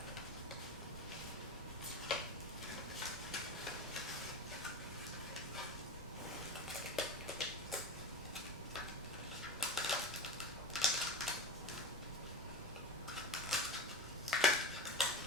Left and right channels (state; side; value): normal; both; correlation 0.26